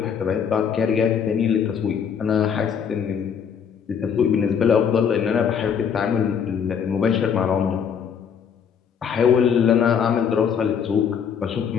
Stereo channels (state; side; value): quieter; right; 7.3 dB